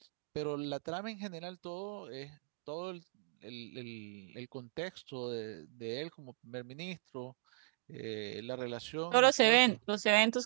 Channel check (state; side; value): silent; left; digital silence